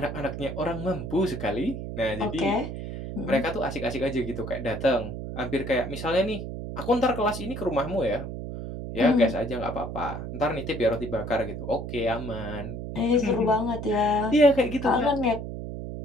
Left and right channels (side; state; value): right; noise; hum, 7 dB below the sound